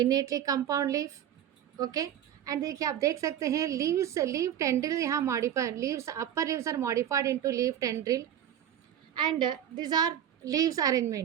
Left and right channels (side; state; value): left; quieter; 10.3 dB